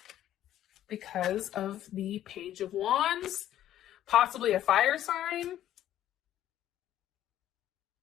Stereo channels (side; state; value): right; quieter; 12.2 dB